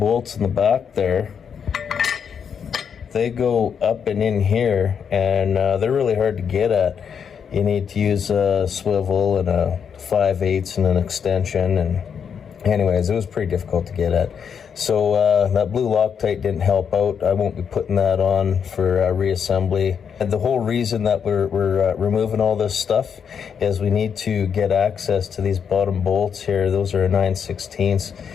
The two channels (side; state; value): right; quieter; 7.2 dB